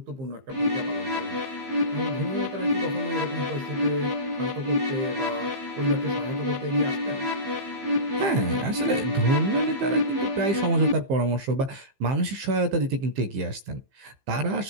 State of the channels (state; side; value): late; left; 15 ms